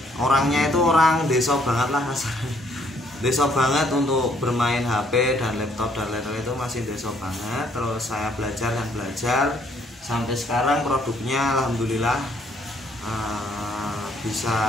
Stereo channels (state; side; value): normal; both; correlation 0.67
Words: orangnya itu orang desa banget lah rasanya. Desa banget untuk bermain HP dan laptop dan lain-lain, itu masih desa banget. Terus saya belajar dan belajar sampai sekarang produknya alhamdulillah bisa